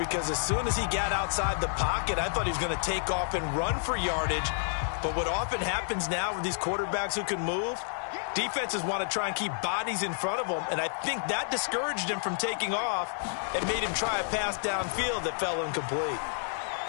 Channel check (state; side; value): silent; right; 58 dB below the other